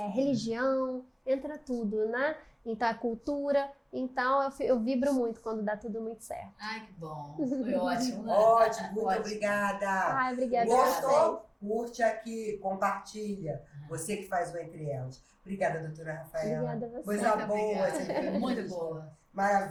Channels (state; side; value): identical; both; correlation 1.00